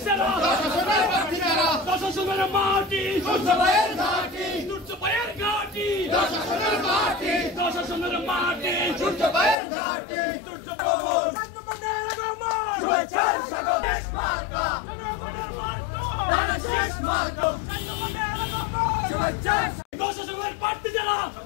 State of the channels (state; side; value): drops out; right; at 9.6 s